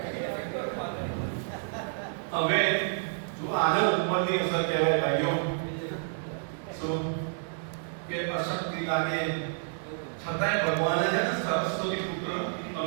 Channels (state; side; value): silent; left; 58 dB below the other